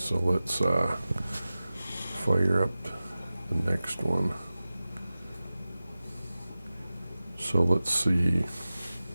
let's fire up the next one. So let's see.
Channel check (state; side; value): inverted; both; correlation -0.96